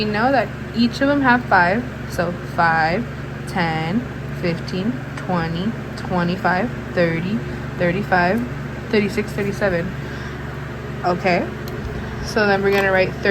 know that each of them have 5. So 5, 10, 15, 20, 25, 30, 35, 36, 37. Okay. So then we're going to write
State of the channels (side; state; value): both; identical; correlation 1.00